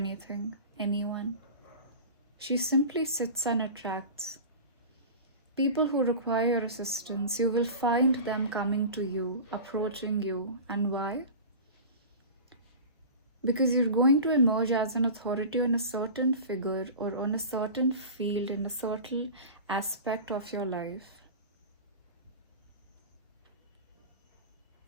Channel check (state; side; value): inverted; both; correlation -0.33